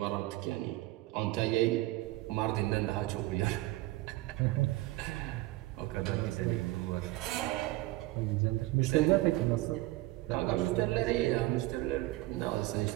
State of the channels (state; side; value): quieter; left; 18.7 dB